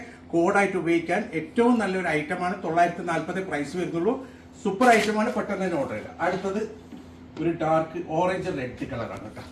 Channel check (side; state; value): both; identical; correlation 1.00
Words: കോഡായിട്ട് ഉപയോഗിക്കാൻ ഏറ്റവും നല്ലൊരു ഐറ്റമാണ്. 940 പ്രൈസ് വരുന്നുള്ളൂ. സൂപ്പർ ഐറ്റമാണ്. പെട്ടെന്ന് തന്നെ ഓർഡർ ചെയ്യുക. അടുത്തത് ഒരു ഡാർക്ക് ഓറഞ്ച് റെഡ് കളറാണ് കേട്ടോ.